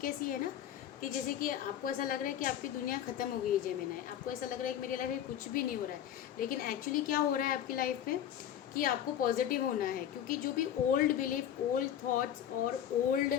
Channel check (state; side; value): quieter; right; 10.3 dB